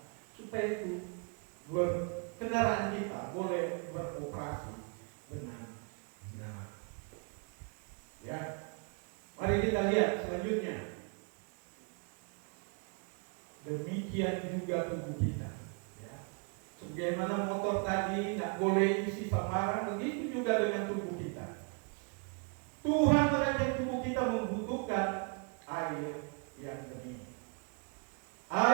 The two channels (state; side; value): quieter; left; 36.9 dB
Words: supaya itu kendaraan kita boleh beroperasi dengan benar. Ya, mari kita lihat selanjutnya. Demikian juga tubuh kita, ya. Sebagaimana motor tadi tidak boleh isi sembarang, begitu juga dengan tubuh kita. Tuhan terhadap tubuh kita membutuhkan air yang bening.